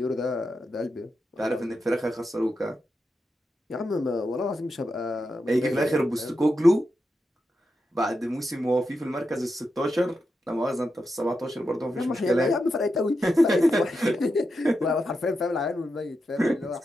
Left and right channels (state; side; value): normal; both; correlation 0.87